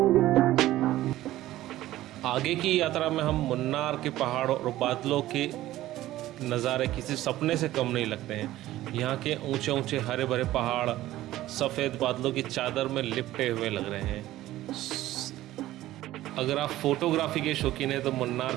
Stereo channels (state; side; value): quieter; left; 15.2 dB